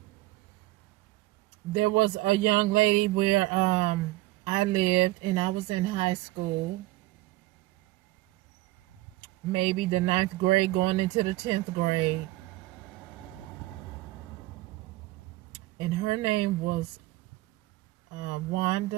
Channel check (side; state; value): left; quieter; 18.9 dB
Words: There was a young lady where I lived, and I was in high school, maybe the 9th grade going into the 10th grade. And her name was